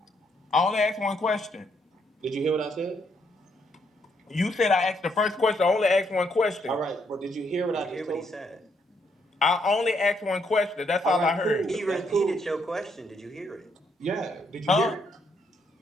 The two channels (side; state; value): both; normal; correlation 0.74